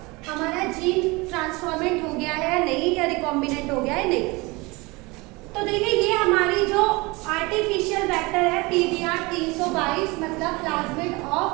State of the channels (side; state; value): left; quieter; 24.7 dB